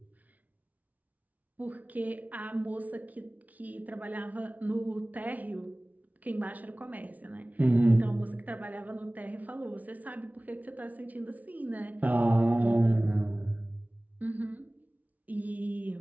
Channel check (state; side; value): late; left; 0.073 ms